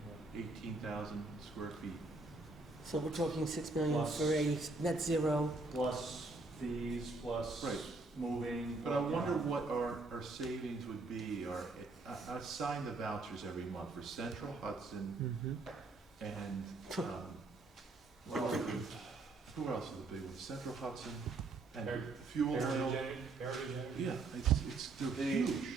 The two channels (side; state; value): left; quieter; 3.5 dB